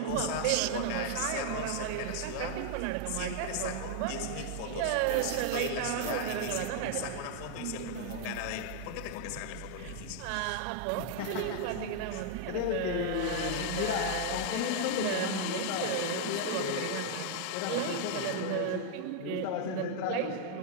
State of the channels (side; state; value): both; different; correlation 0.00